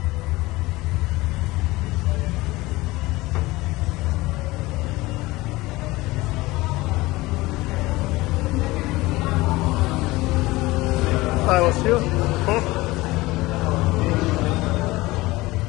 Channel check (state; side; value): quieter; right; 20.2 dB